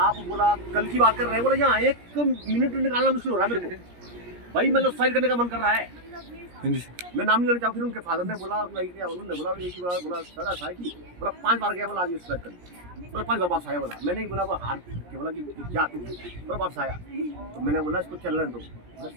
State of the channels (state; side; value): late; left; 17 ms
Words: बोला कल की बात कर रहे हैं, बोला यहाँ 1 मिनट निकालना मुश्किल हो रहा है मेरे को भाई, मतलब सुसाइड करने का मन कर रहा है। मैं नाम नहीं लेना चाहूँ। फिर उनके फादर ने बोला, उन्होंने बोला एक ही बार, बोला सर ऐसा है कि बोला 5 बार गया, बोला आज सुसाइड कर, बोला 5 बार वापस आया। बोला मैंने ही बोला वो हार के बोला कि क्या तू, बोला वापस आया। तो मैंने बोला इसको चलने दो, बोला